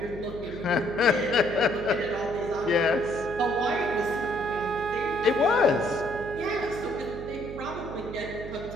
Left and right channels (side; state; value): right; noise; hum, 12 dB below the sound